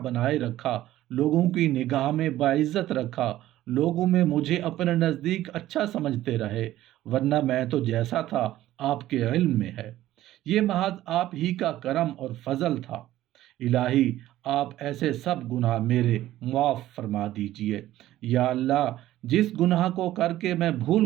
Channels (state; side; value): quieter; left; 14.4 dB